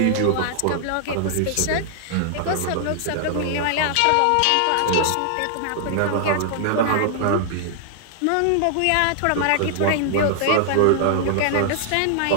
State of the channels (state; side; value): different; both; correlation -0.01